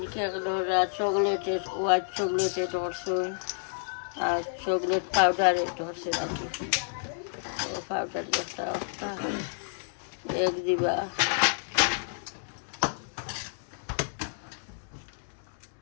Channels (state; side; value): silent; right; 58 dB below the other